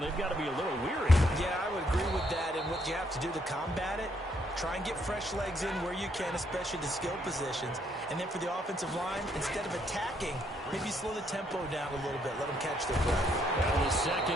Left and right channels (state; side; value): normal; both; correlation 0.72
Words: got to be a little weary. Yeah, I would agree with that, and what you have to do to combat it, try and get fresh legs in where you can, especially the skill positions. And then for the offensive line, instead of attacking, maybe slow the tempo down a little bit. Let them catch their breath. Well, the